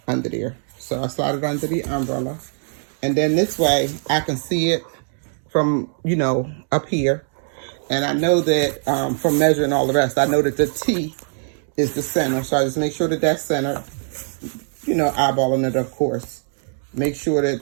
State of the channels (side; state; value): left; silent; 64 dB below the other